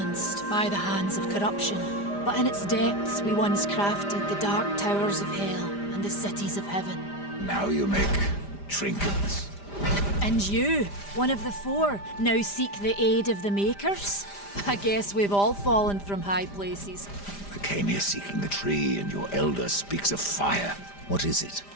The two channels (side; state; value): right; late; 5.0 ms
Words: by the hands of corruption. But in its depths we once crafted the dark towers of hell and the cities of heaven. Now you make trinkets. And you, one of the four, now seek the aid of the Makers? I guess we've all fallen from high places. I came here seeking the tree, and your elder speaks of fire. What is it?